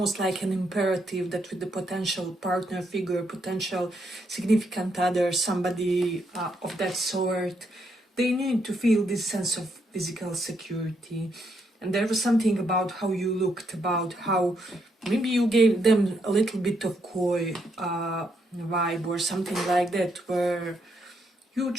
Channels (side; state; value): both; normal; correlation 0.77